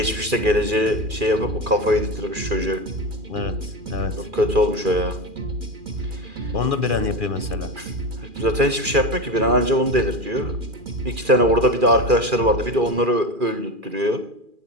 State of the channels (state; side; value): late; left; 2.4 ms